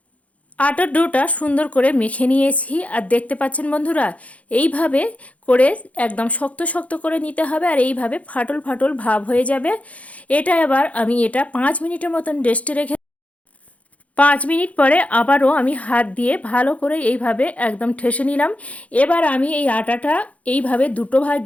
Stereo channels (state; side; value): late; right; 0.066 ms